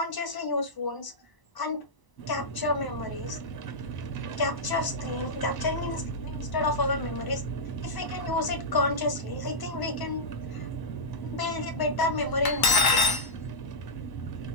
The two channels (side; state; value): right; late; 1.0 ms